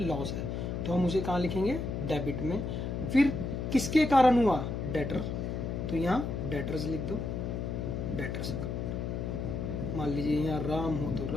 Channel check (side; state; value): left; noise; hum, 3 dB below the sound